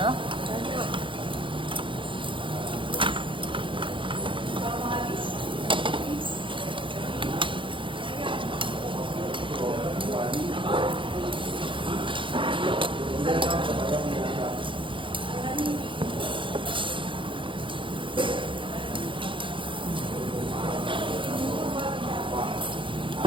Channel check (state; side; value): late; left; 0.25 ms